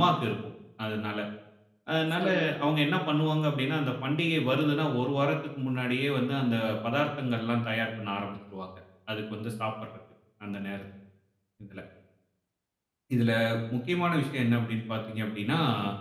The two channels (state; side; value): identical; both; correlation 1.00